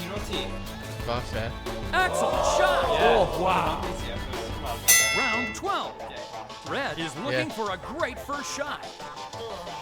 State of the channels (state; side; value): identical; both; correlation 1.00